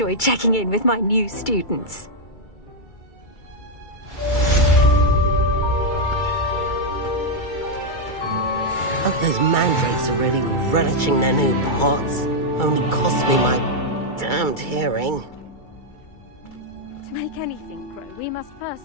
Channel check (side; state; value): right; late; 2.3 ms